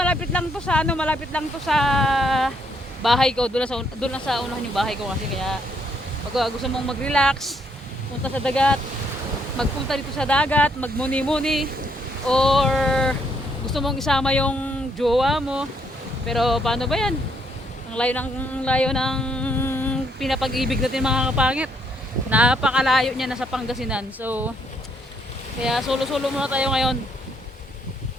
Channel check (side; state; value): both; normal; correlation 0.72